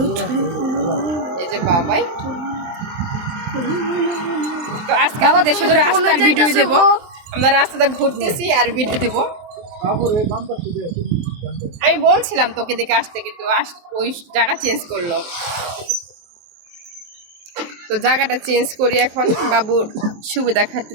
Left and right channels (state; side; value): late; left; 23 ms